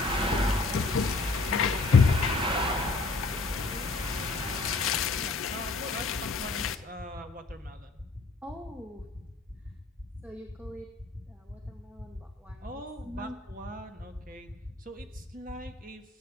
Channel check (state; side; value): quieter; right; 3.6 dB